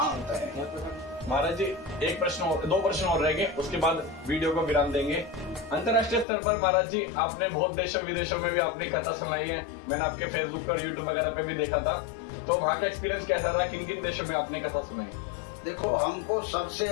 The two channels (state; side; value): drops out; right; at 6.2 s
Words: है। महाराज जी एक प्रश्न और, 2 प्रश्न और रहेंगे, उसके बाद वीडियो को विराम देंगे। अंतर्राष्ट्रीय स्तर पर महाराज जी आपने बहुत देशों विदेशों में भी आपने कथा सुनाई है, मैंने आपके फेसबुक पर, यूट्यूब वगैरह पे भी देखा था, तो वहाँ का एक्सपीरियंस कैसा रहा? किन किन देशों में आपने कथा सुनाई? देखो, हमको सबसे